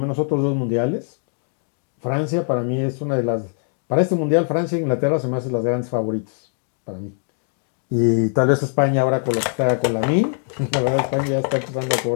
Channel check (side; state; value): right; silent; 57 dB below the other